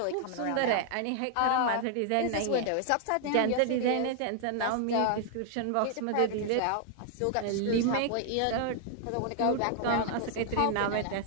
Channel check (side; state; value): both; different; correlation 0.00